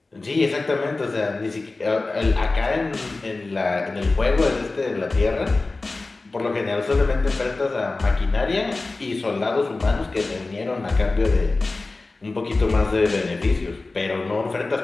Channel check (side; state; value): right; quieter; 3.4 dB